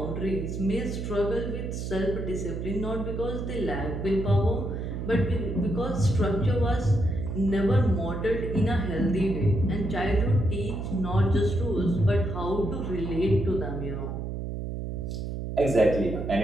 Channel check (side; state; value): right; noise; hum, 5 dB below the sound